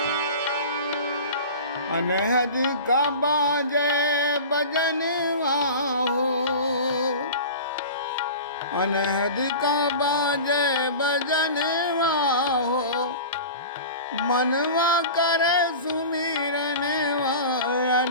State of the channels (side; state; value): both; inverted; correlation -0.34